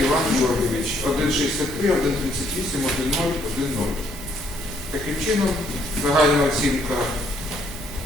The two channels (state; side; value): normal; both; correlation 0.68